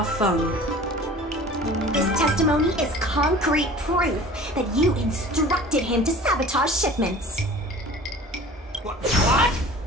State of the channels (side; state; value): both; normal; correlation 0.43